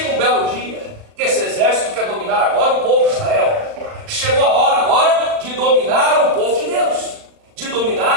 um belo dia que esse exército quer dominar agora o povo de Israel. Chegou a hora agora de dominar o povo de Deus, de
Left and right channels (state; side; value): late; left; 38 ms